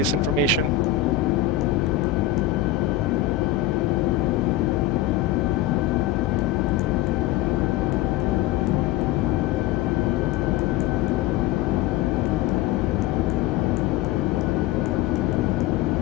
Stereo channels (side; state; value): right; quieter; 12.6 dB